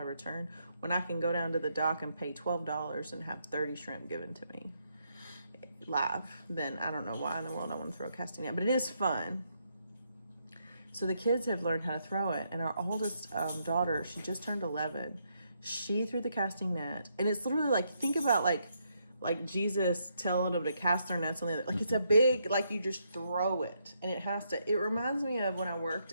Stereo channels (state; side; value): inverted; both; correlation -0.77